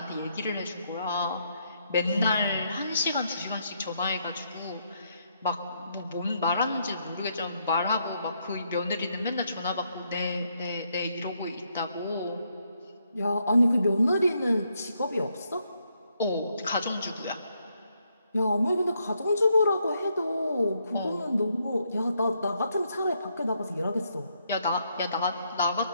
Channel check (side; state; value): both; inverted; correlation -0.76